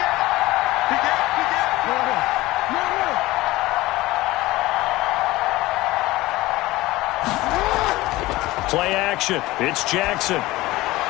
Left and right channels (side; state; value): right; quieter; 18.8 dB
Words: Play action. It's Jackson.